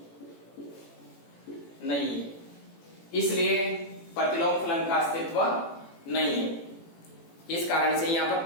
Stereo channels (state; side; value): late; right; 18 ms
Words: नहीं है, इसलिए प्रतिलोम फलन का अस्तित्व नहीं है। इस कारण से यहां पर